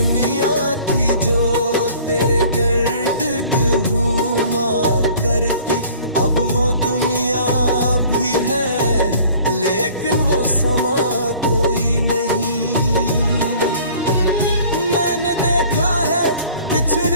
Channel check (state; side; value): inverted; both; correlation -0.50